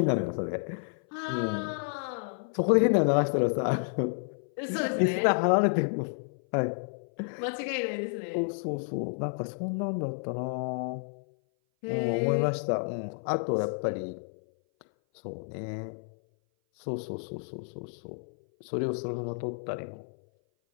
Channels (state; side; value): silent; right; 57 dB below the other